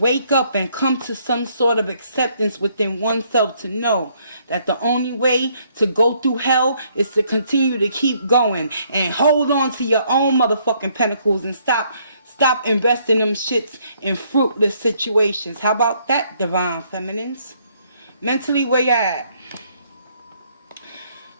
up and come to some sort of acceptance within oneself to know that the only way to go through hell is to continue to keep going and hold on to your own motherfucking pentacles and stop investing them shits in fruitless situations. How about that, Divine Feminines? Mentally, where you at?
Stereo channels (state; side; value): inverted; both; correlation -0.68